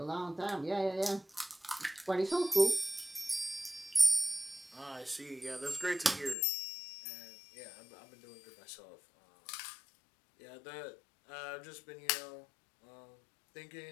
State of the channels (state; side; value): drops out; right; at 6.4 s